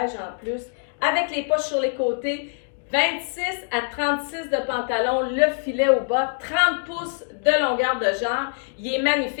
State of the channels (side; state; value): right; silent; 63 dB below the other